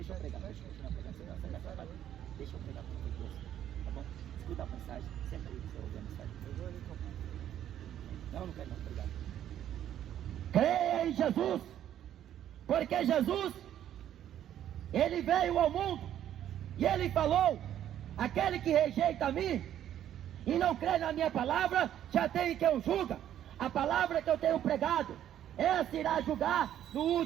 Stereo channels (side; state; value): left; quieter; 11.0 dB